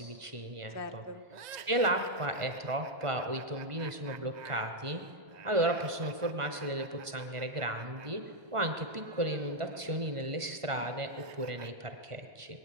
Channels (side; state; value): left; late; 1.5 ms